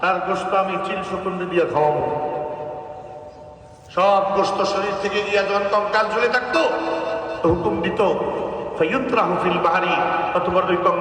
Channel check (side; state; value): both; identical; correlation 1.00